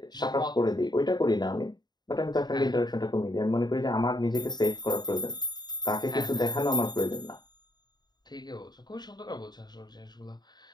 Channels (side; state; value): right; late; 0.20 ms